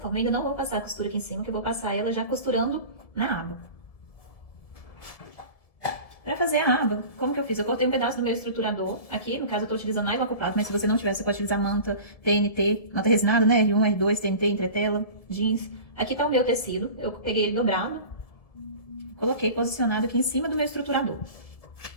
Ainda não vou passar a costura aqui em cima, que eu vou passar ela já costurando na aba. Pra fazer a aba, como que eu fiz? Eu cortei um pedaço do meu estruturador. Aqui, no caso, eu tô utilizando nylon acoplado, mas se você não tiver, você pode utilizar manta, TNT, manta resinada, né? R1, R2, TNT, entretela, jeans. Aqui tá o meu tecido. Eu peguei ele dobrado, coloquei posicionado aqui em cima do meu estruturador.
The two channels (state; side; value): late; right; 1.7 ms